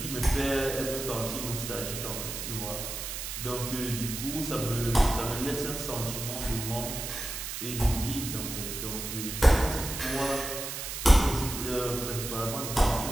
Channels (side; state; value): right; noise; hiss, 6 dB below the sound